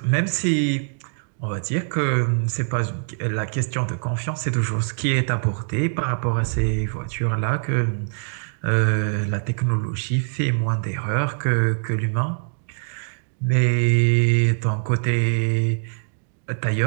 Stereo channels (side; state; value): left; silent; digital silence